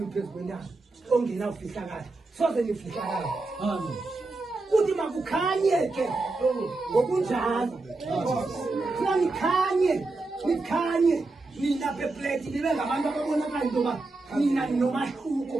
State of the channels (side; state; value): left; quieter; 3.3 dB